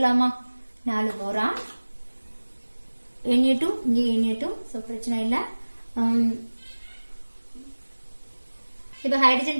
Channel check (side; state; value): both; inverted; correlation -1.00